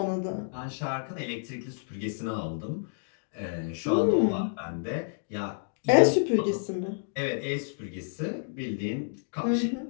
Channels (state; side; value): silent; right; digital silence